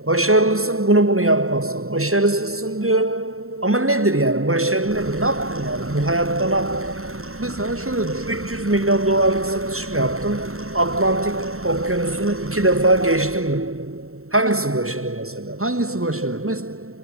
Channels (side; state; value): left; late; 0.63 ms